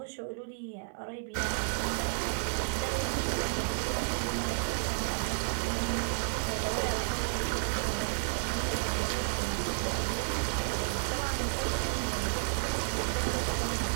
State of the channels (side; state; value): left; silent; 55 dB below the other